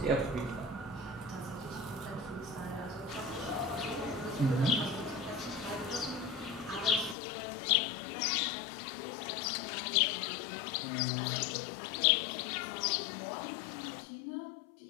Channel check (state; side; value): drops out; right; at 7.2 s